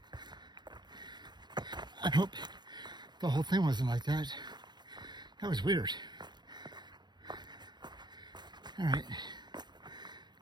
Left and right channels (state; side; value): late; left; 0.21 ms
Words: I hope the whole thing wasn't like that. That was weird. Alright.